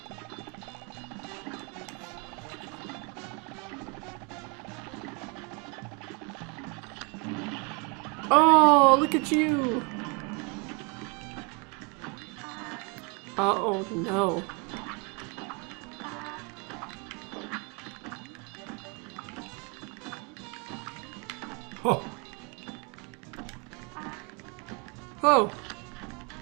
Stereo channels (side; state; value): left; quieter; 32.1 dB